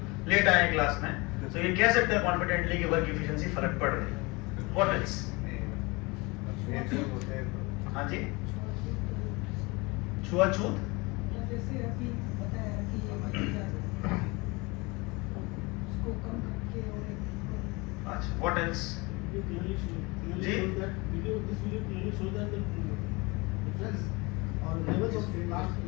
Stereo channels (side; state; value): right; quieter; 25.5 dB